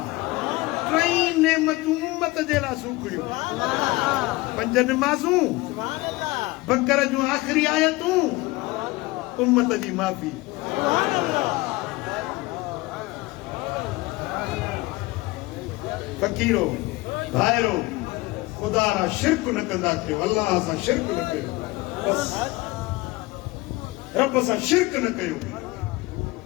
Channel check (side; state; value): right; quieter; 21.3 dB